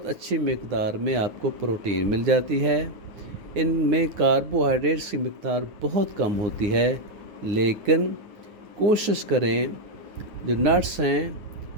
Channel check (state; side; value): late; left; 9.8 ms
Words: اچھی مقدار میں آپ کو پروٹین مل جاتی ہے، ان میں کاربوہائیڈریٹس کی مقدار بہت کم ہوتی ہے، لیکن کوشش کریں جو نٹس ہیں